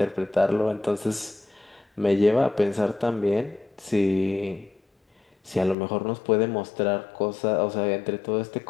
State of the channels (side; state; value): right; drops out; at 5.8 s